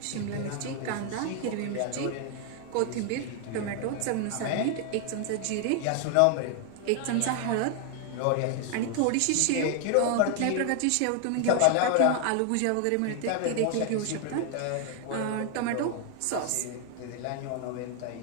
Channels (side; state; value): both; different; correlation 0.00